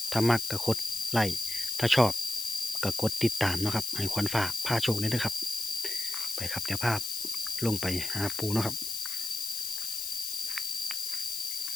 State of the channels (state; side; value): noise; left; hiss, 3 dB below the sound